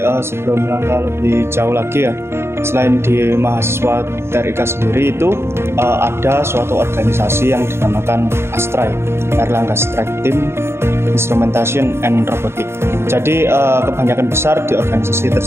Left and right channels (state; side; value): late; left; 0.12 ms